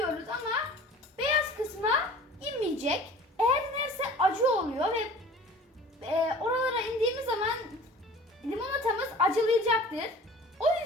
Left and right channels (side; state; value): both; normal; correlation 0.45